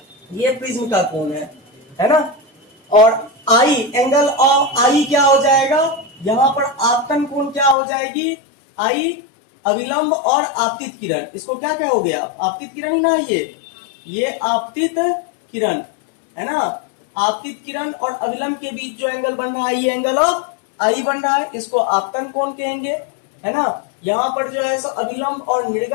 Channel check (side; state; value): right; drops out; at 7.8 s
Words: ये प्रिज्म का कोण है ना। और आई, एंगल ऑफ आई क्या हो जाएगा, यहां पर आपतन कोण क्या हो जाएगी, आई अविलंब और आपतित किरण, इसको क्या कहोगे आप, आपतित किरण ही ना, ये आपतित किरण है ना। आपतित किरण और अविलंब के बीच जो एंगल बन रहा है ये एंगल ऑफ आई बन रहा है, इसको आपतन कोण कहेंगे, है ना। यहाँ पर जो है सो अविलंब और